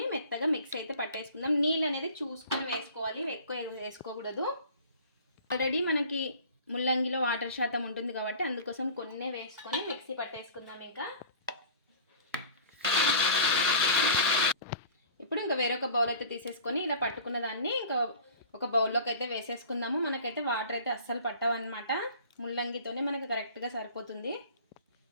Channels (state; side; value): inverted; both; correlation -0.43